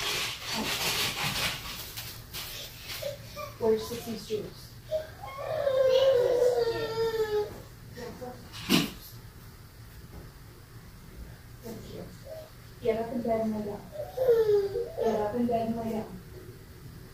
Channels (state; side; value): identical; both; correlation 1.00